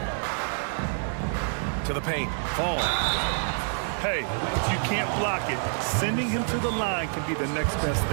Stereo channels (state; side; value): silent; left; 60 dB below the other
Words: To the paint. Fall. Hey, if you can't block it, sending him to the line can be the next best